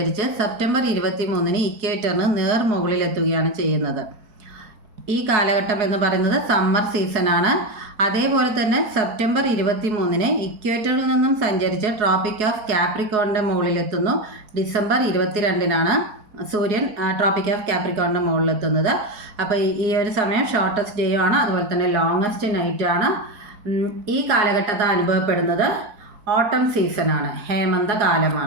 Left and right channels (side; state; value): left; late; 4.7 ms